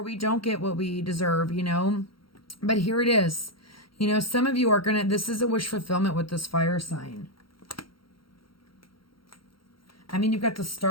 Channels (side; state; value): right; late; 0.73 ms